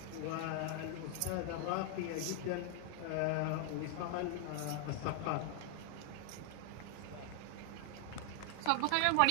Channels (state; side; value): different; both; correlation 0.00